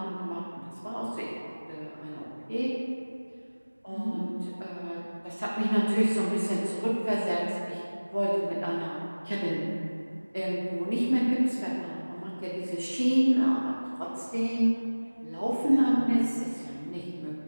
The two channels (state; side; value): inverted; both; correlation -1.00